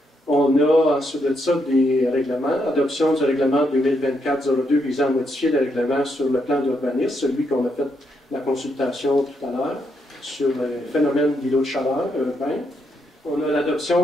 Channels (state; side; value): normal; both; correlation 0.79